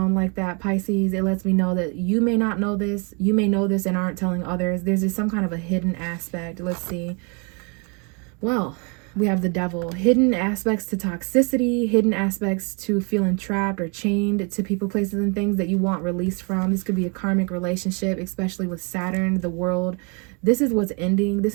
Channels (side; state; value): left; quieter; 34.5 dB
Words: like that, Pisces, it lets me know that you may not know this. You may know this and aren't telling others. There's just some kind of a hidden aspect. Let's see. Well, we have the Devil. Hidden aspects to toxicity, hidden aspects to feeling trapped or chained to people, places, and things that you want released from. This could be a karmic relationship, especially with Saturn, the World. This is what's ending. This